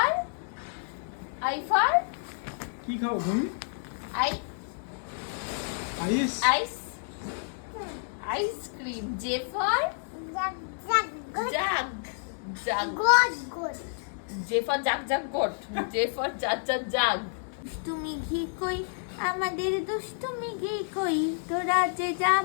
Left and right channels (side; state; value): right; silent; digital silence